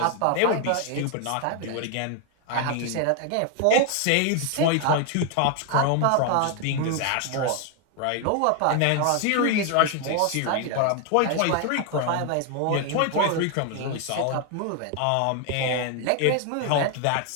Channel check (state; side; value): different; both; correlation 0.01